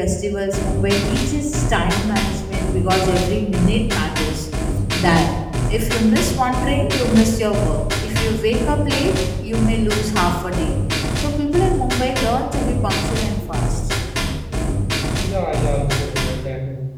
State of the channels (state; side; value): identical; both; correlation 1.00